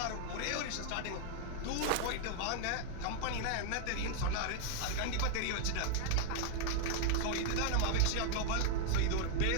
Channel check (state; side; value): different; both; correlation 0.00